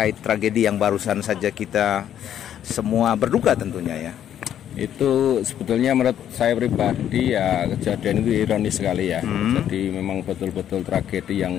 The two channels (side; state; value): right; quieter; 10.3 dB